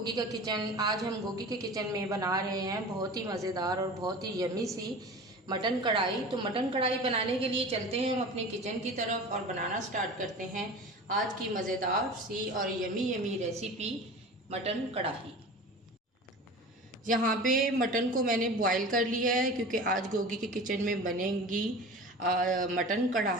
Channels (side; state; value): both; normal; correlation 0.36